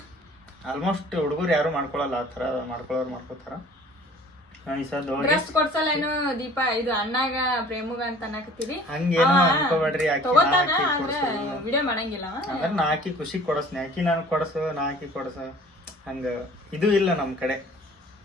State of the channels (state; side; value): normal; both; correlation 0.50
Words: ಆಲ್ಮೋಸ್ಟ್ ಹುಡುಗರು ಯಾರು ಮಾಡ್ಕೊಳಲ್ಲ. ಆ ಥರ ಮಾಡ್ಕೊಳ್ಳೋರು ಮಾಡ್ಕೋತಾರ. ಕೊಡ್ಸಲ್ಲೇನು ದೀಪ ಇದು ಅಣ್ಣಾಗ ಪ್ರೇಮಗ ಅಂತ ಅನ್ನಕತ್ತೀವಿ. ಹಂಗೇನು ಅನ್ಕೋಬೇಡ್ರಿ. ವಿಡಿಯೋ ಮಾಡಂಗಿಲ್ಲ ಅಂದ್ರೆ ನಾ ಹಾಕಿ ಖುಷಿ ಕೊಡಸ್ನಿ. ಹಾಕಿ ನಾನು ಕೊಡಸು, ನಾ ಹಾಕಿ ಕೊಡಸು ಹಂಗ ಇದು ಇಲ್ಲ ನಮ್ಮ ಕಡೆ.